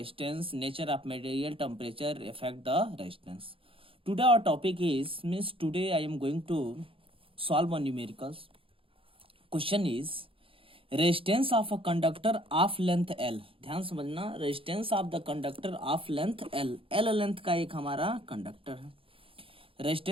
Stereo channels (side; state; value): left; late; 0.26 ms